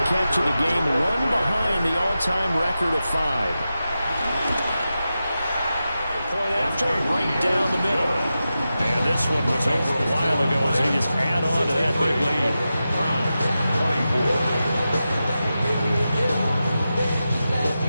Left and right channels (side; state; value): both; inverted; correlation -0.91